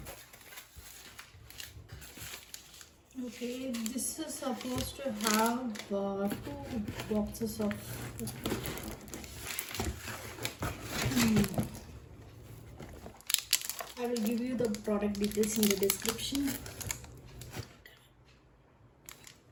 Okay, this is supposed to have two boxes of. I will give you the product details in the description.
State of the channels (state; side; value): identical; both; correlation 1.00